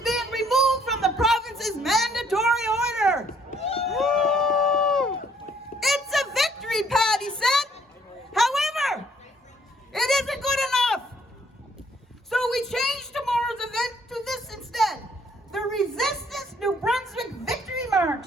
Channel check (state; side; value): normal; both; correlation 0.64